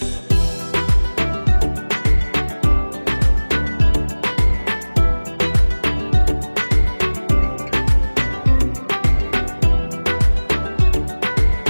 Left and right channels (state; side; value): inverted; both; correlation -1.00